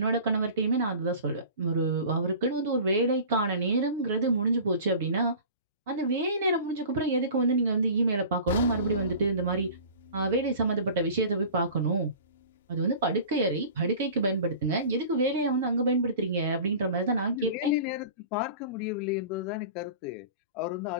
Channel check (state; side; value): inverted; both; correlation -0.40